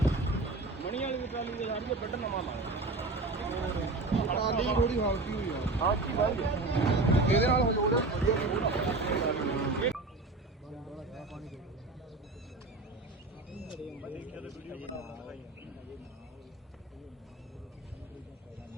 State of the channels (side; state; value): left; quieter; 3.2 dB